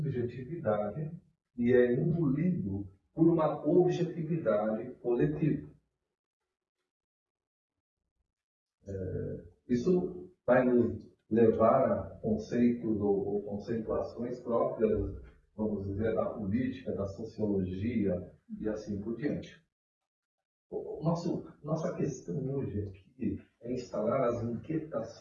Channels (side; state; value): both; identical; correlation 1.00